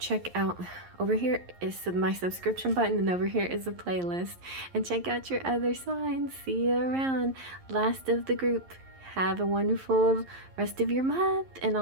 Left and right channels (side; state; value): left; late; 11 ms